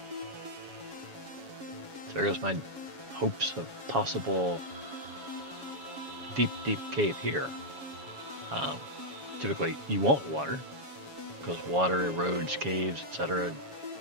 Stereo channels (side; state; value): left; late; 7.2 ms